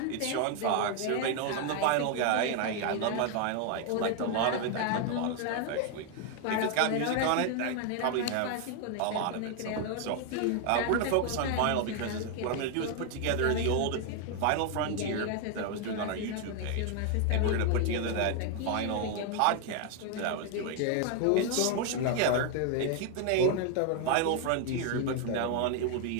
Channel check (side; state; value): both; different; correlation 0.00